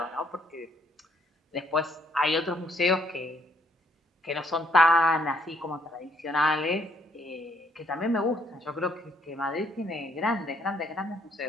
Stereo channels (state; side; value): normal; both; correlation 0.69